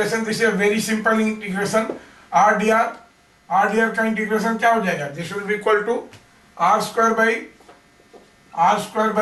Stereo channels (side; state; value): both; identical; correlation 1.00